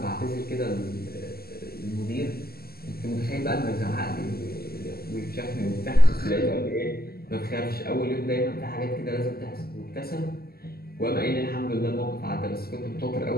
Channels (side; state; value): right; late; 0.45 ms